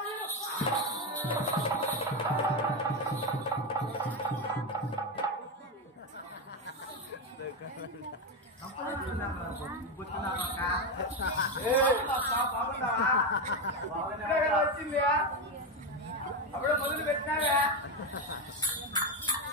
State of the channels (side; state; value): both; normal; correlation 0.11